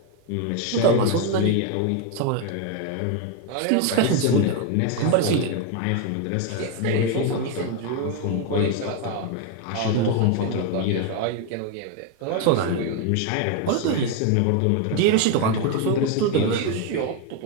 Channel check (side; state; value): both; different; correlation 0.01